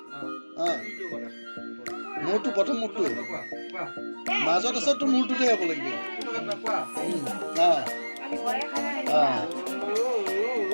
মোৰটো প্ৰথম মোৰটো মাজত আছে তোৰ মূৰটোতে হ'ব লাগিব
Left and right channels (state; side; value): inverted; both; correlation -1.00